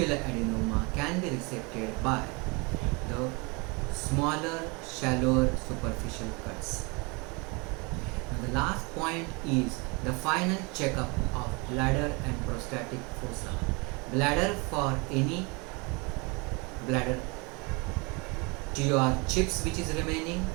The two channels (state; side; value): quieter; left; 29.2 dB